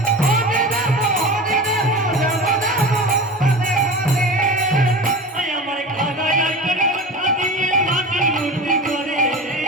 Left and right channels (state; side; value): normal; both; correlation 0.31